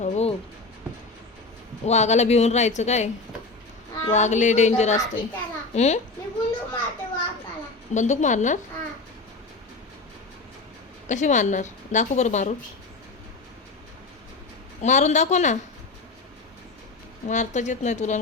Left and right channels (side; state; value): right; quieter; 3.6 dB